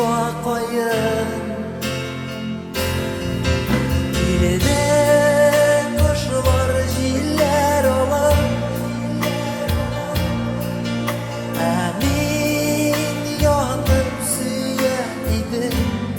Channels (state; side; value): identical; both; correlation 1.00